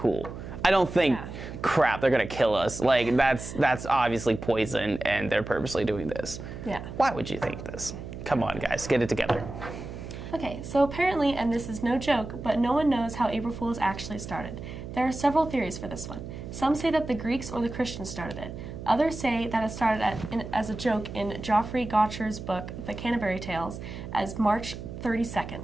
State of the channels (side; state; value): right; noise; hum, 10 dB below the sound